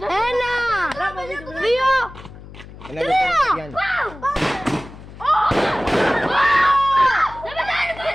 δύο, Ένα λεπτό. Γιάννη.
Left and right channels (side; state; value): left; noise; hum, 17 dB below the sound